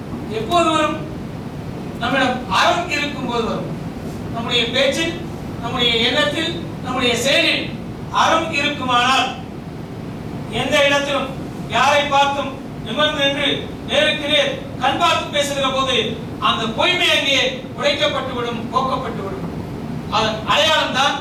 எப்போது வரும்? நம்மிடம் அறம் இருக்கும் போது வரும். நம்முடைய பேச்சில், நம்முடைய எண்ணத்தில், நம்முடைய செயலில் அறம் இருக்குமானால் எந்த இடத்திலும் யாரை பார்த்தும் நிமிர்ந்து நின்று நேருக்கு நேர் கண் பார்த்து பேசுகிற போது அந்த பொய்மை அங்கே உடைக்கப்பட்டுவிடும், போக்கப்பட்டுவிடும். அதன் அடையாளம் தான்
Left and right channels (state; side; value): identical; both; correlation 1.00